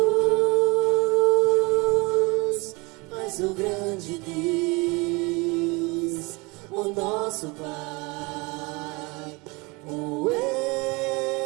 Mas o grande Deus, o nosso Pai, o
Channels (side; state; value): left; quieter; 26.7 dB